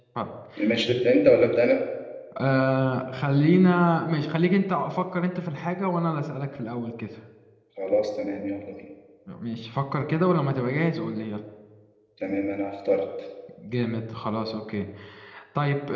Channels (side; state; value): both; identical; correlation 1.00